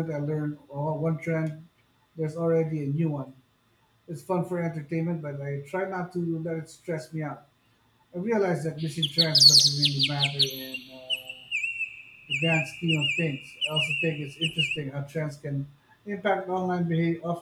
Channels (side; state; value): both; identical; correlation 1.00